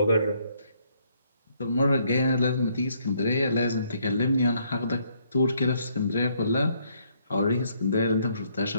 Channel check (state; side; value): inverted; both; correlation -0.70